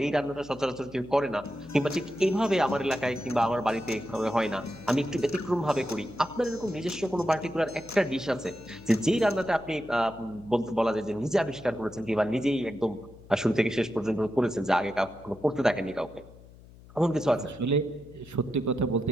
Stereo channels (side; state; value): left; noise; hum, 21 dB below the sound